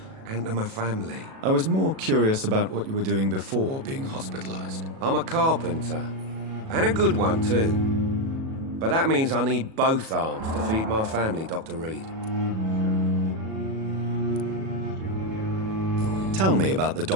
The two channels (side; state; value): left; late; 37 ms